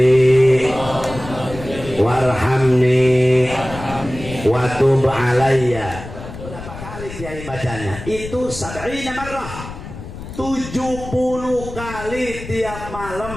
warhamni wa tub alayya. Berapa kali kiai bacanya? Itu 70 marrah, 70 kali tiap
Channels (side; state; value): left; noise; rumble, 12 dB below the sound